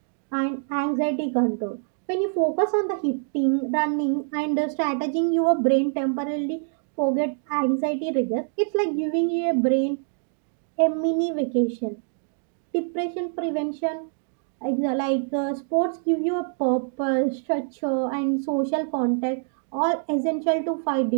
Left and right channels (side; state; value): left; silent; 62 dB below the other